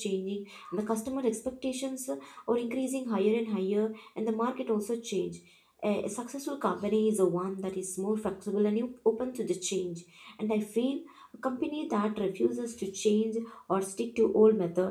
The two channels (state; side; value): identical; both; correlation 1.00